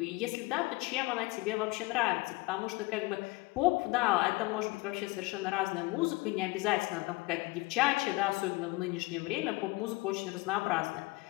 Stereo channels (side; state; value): right; quieter; 22.8 dB